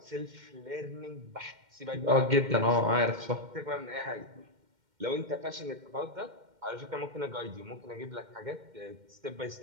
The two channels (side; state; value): left; late; 2.1 ms